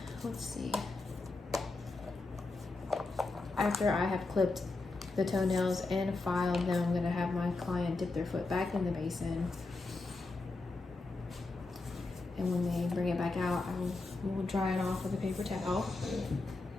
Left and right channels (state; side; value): quieter; right; 3.4 dB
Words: Let's see. After I have clipped the toenails and filed them, I'm going to have my client dip their foot back in the basin. And when they bring it back out, I will dry it off with a paper towel.